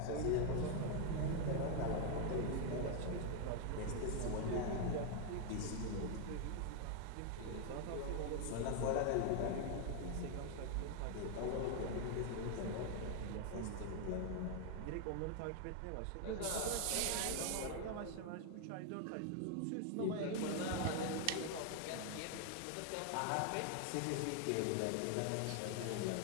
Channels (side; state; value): both; different; correlation 0.01